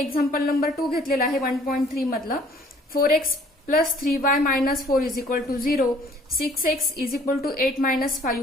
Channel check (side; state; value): both; normal; correlation 0.57